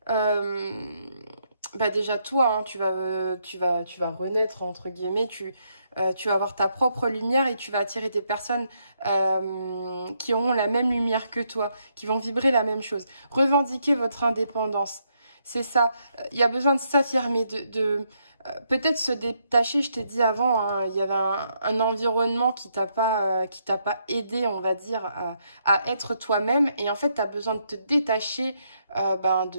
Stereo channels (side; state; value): both; inverted; correlation -0.76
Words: Déjà toi, hein, tu vas renaître entre guillemets, tu vas avoir ta propre lumière et tu vas attirer des personnes qui auront la même lumière que toi, qui vont vibrer la même chose. Revendiquer votre indépendance, c'est ça. Il y a besoin de s'affirmer, peut-être se détacher. Je t'ai dit avant, hein, il y avait un environnement qui t'a pas aidé, on va dire, à être toi-même. Et en fait, tu as besoin de te détacher